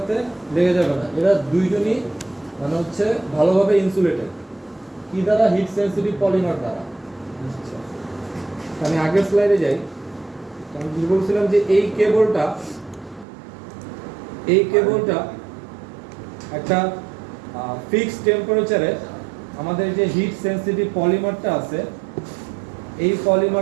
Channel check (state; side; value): drops out; left; at 13.2 s